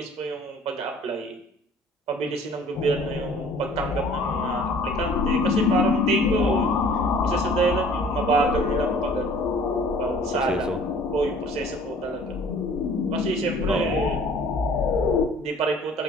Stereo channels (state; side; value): normal; both; correlation 0.51